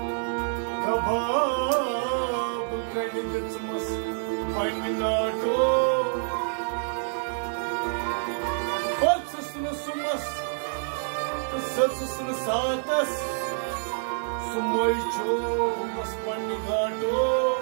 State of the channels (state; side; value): silent; left; digital silence